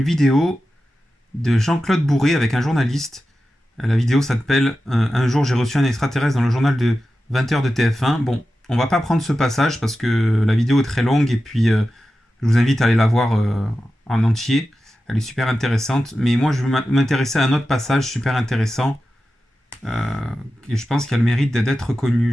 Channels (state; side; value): normal; both; correlation 0.93